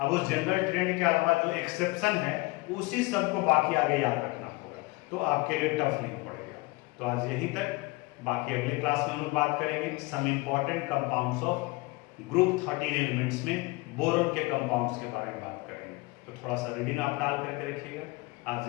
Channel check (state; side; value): quieter; right; 23.8 dB